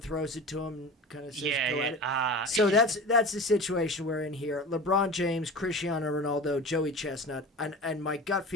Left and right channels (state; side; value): normal; both; correlation 0.33